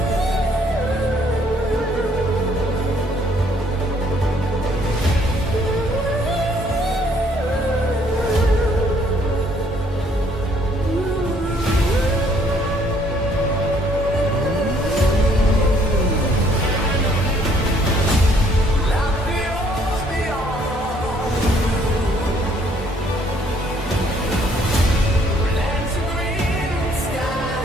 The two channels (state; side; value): normal; both; correlation 0.64